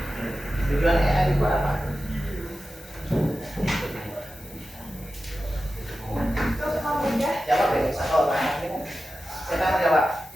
Tujuan AI itu apa? Untuk memudahkan Jawab deh, satu orang. Siapa yang jawab?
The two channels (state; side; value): noise; left; hiss, 22 dB below the sound